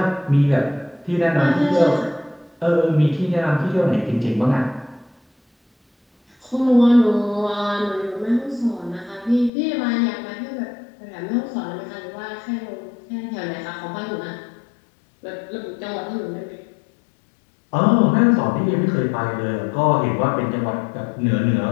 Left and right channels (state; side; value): drops out; right; at 9.5 s